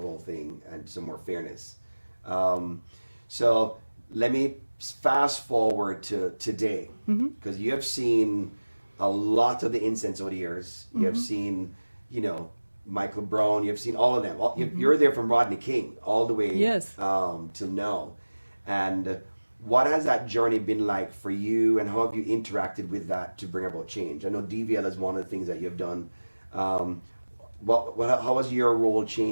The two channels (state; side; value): inverted; both; correlation -1.00